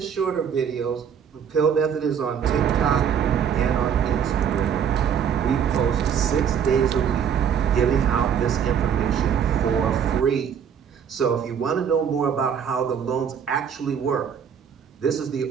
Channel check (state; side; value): quieter; left; 7.8 dB